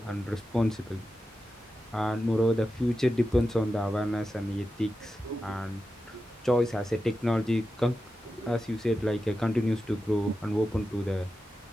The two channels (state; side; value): normal; both; correlation 0.91